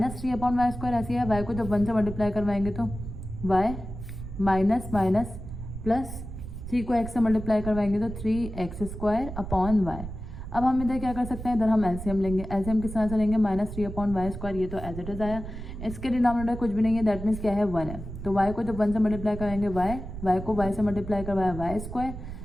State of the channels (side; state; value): right; noise; rumble, 9 dB below the sound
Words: अपॉन वाई स्क्वायर ऐसी है, y को जब 1 से मल्टीप्लाई करवाएंगे तो y माइनस माइनस प्लस 3 को x से मल्टीप्लाई करवाएंगे तो 3x स्क्वायर अपॉन y। अब हम इधर क्या कर सकते हैं, इधर हम एलसीएम लेंगे, एलसीएम किस तरह से लेंगे, -3 अपॉन वाई स्क्वायर, ये तो एज इट इज आया, इसके डिनोमिनेटर कुछ भी नहीं है, दैट मीन्स क्या है, 1 है, तो y को जब 1 से मल्टीप्लाई कराएंगे y को y से मल्टीप्लाई करवाया वाई स्क्वायर,